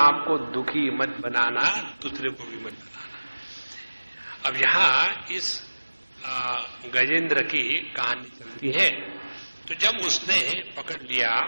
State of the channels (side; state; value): both; inverted; correlation -1.00